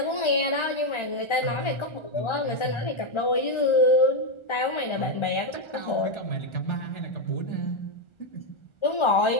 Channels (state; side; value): late; right; 1.4 ms